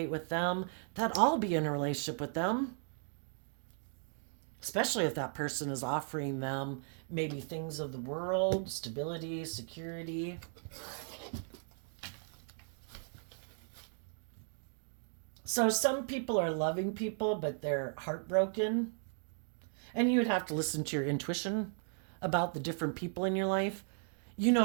with them, that I'll be in a relationship with them. Especially if that person is offering them maybe things of the world, stability, security. So some people are loving people, but they're heartbroken. And you would have to listen to your intuition about the different people in your life. You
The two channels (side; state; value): left; silent; 54 dB below the other